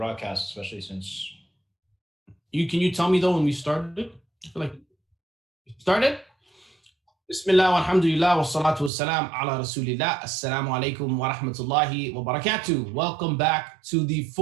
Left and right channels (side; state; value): left; drops out; at 8.9 s